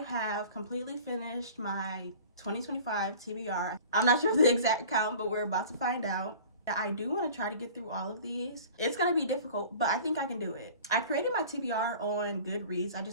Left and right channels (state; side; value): inverted; both; correlation -0.43